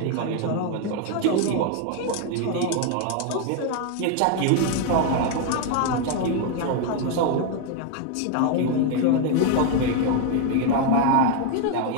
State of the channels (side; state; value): both; different; correlation 0.00